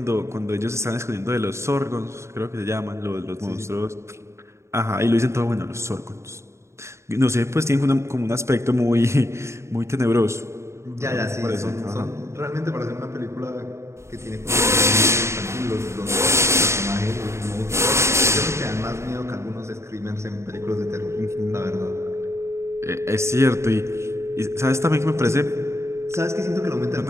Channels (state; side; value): late; left; 0.13 ms